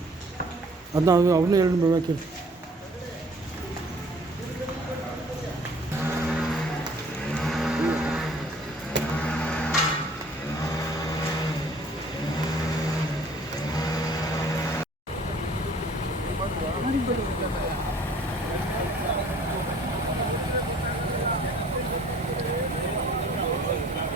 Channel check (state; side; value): normal; both; correlation 0.54